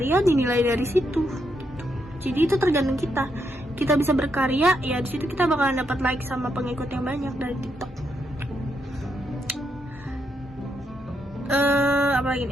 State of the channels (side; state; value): both; normal; correlation 0.79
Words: dinilai dari situ. Jadi itu tergantung kita. Kita bisa berkarya, ya di situ kita bakalan dapat like sama pengikut yang banyak dari TikTok. Apa lagi